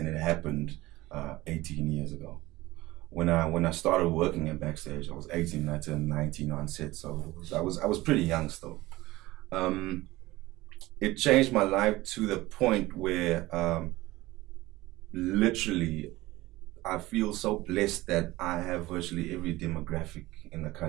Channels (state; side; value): quieter; left; 18.7 dB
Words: it happened 18 years ago. When I started working at Backstage, I was 18 and I turned 19 on set, so I was pretty young still. It changed my life to the point where literally I feel so blessed that I have virtually every demographic in the